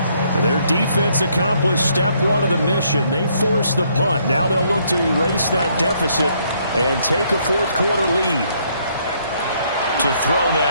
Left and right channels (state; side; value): inverted; both; correlation -0.69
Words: Their defense accomplished step 1 of the mission. They forced the punt. Now they'll look to erase that deficit and take a 4th quarter lead. To throw